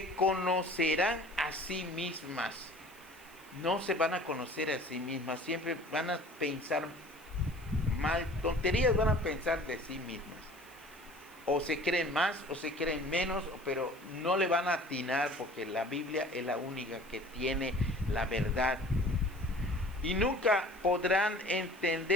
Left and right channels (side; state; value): left; noise; hiss, 25 dB below the sound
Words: conocerán a sí mismas. No se van a conocer a sí mismas. Siempre van a pensar mal, tonterías van a pensar de sí mismas. O se creen más o se creen menos, pero no le van a atinar porque la Biblia es la única que tiene la verdad. Y nunca podrán